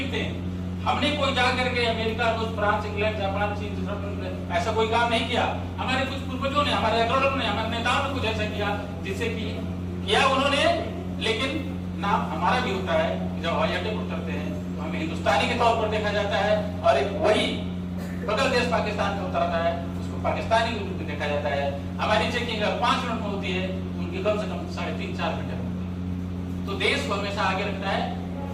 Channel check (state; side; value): identical; both; correlation 1.00